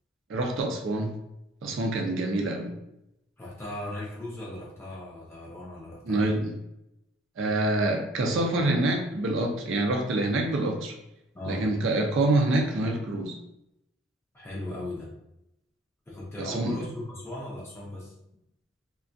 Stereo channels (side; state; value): both; normal; correlation 0.53